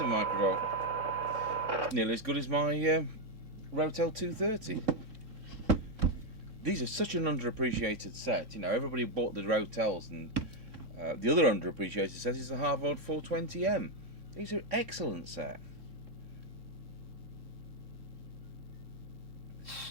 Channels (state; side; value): late; left; 3.8 ms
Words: microvolt. Nearly as good as my Rotel 230. These are such an underappreciated set. You know, everybody bought the Rotels, and The other underappreciated set is the Harvard 420M. These are excellent set.